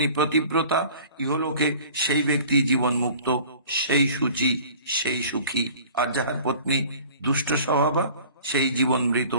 পতিব্রতা, ইহলোকে সেই ব্যক্তি জীবন মুক্ত, সেই সূচি, সেই সুখী। আর যাহার পত্নী দুষ্ট স্বভাবা, সেই জীবন মৃত,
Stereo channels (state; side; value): inverted; both; correlation -0.46